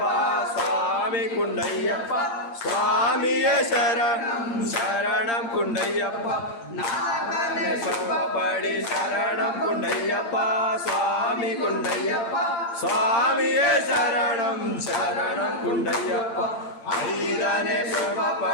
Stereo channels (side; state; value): right; late; 8.7 ms